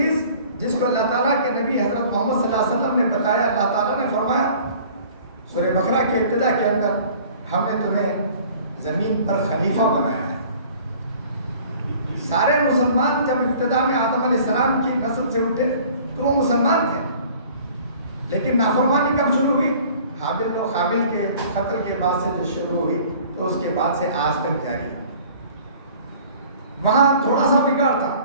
جس کو اللہ تعالیٰ کے نبی حضرت محمد صلی اللہ علیہ وسلم نے بتایا، اللہ تعالیٰ نے فرمایا سورہ بقرہ کے ابتدا کے اندر، ہم نے تمہیں زمین پر خلیفہ بنایا ہے۔ سارے مسلمان جب ابتدا میں آدم علیہ السلام کی نسل سے اٹھے تو وہ مسلمان تھے، لیکن نافرمانی کب شروع ہوئی؟ حابل و قابل کے قتل کے بعد سے جو شروع ہوئی تو اس کے بعد سے آج تک جاری ہے۔ وہاں تھوڑا سا بگاڑ تھا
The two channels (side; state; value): both; inverted; correlation -0.50